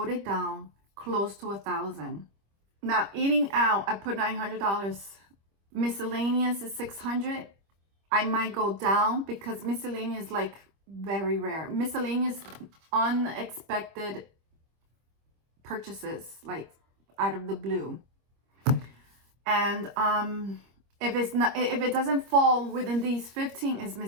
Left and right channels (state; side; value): late; left; 25 ms